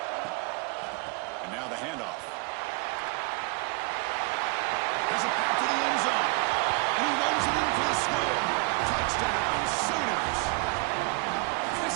And now the handoff. There's a pass to the end zone. And he runs it in for the score. Touchdown, Sooners.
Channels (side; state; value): left; quieter; 28.6 dB